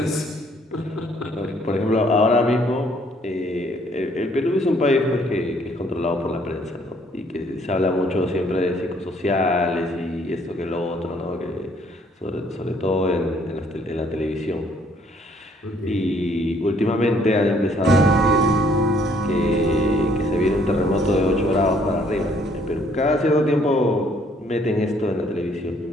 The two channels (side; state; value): both; normal; correlation 0.64